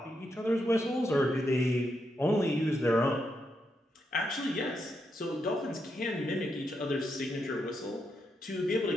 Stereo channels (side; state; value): both; normal; correlation 0.82